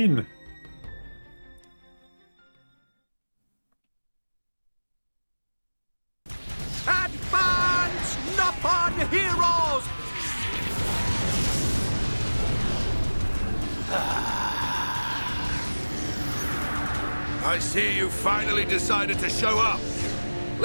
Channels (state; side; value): inverted; both; correlation -1.00